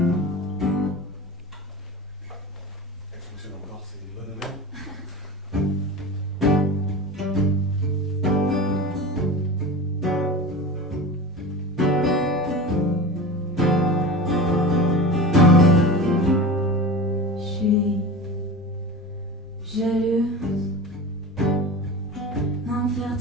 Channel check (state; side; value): normal; both; correlation 0.30